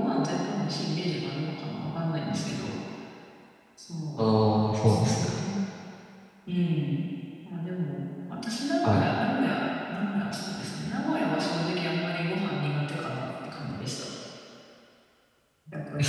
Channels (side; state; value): both; identical; correlation 1.00